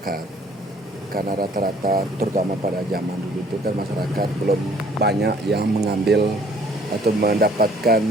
Karena rata-rata terutama pada zaman dulu itu kan masyarakat belum banyak yang mengambil atau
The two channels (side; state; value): both; normal; correlation 0.58